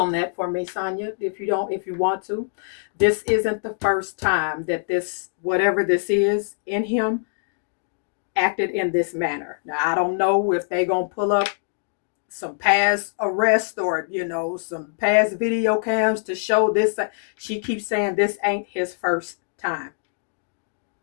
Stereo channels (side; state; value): right; silent; digital silence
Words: that for me, Sonya, if you want to. This isn't the first time that this, whatever this is in him, acted in this manner. Now, I don't know if they gonna pull up some past arrests or, some past video cams to show this. She keeps saying this ain't his first time.